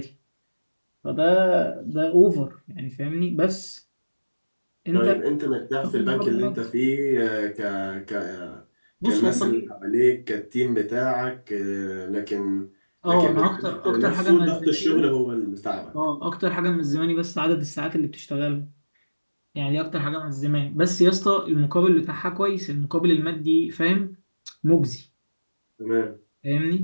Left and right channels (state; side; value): inverted; both; correlation -1.00